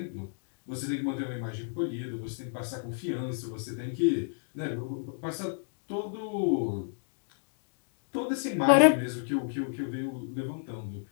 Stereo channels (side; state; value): right; silent; digital silence